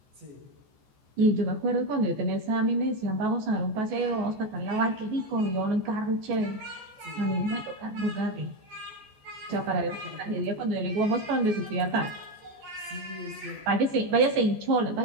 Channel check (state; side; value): late; left; 14 ms